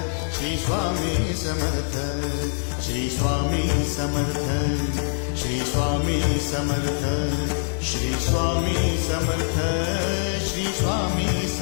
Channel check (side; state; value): right; silent; 59 dB below the other